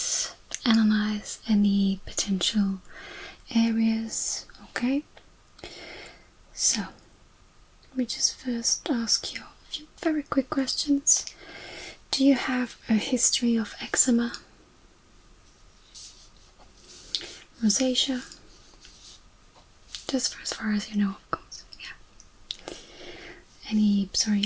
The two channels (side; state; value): both; identical; correlation 1.00